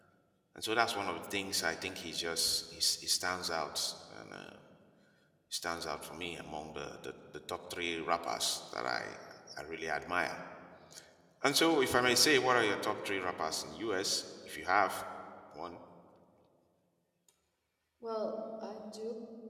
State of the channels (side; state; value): both; identical; correlation 1.00